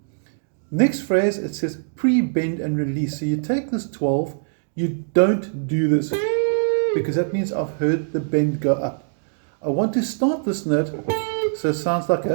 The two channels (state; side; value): silent; left; digital silence